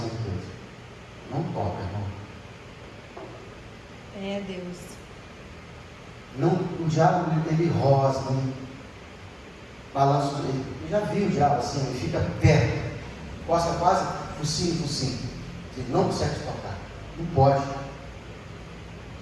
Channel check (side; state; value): both; identical; correlation 1.00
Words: de Deus. Não toca, irmão. É Deus. Não, o diabo, ele rosa, ele balança. Eu já vi o diabo assim, ele fica perto, costa quase focinho. Ele não consegue tocar. Não pode.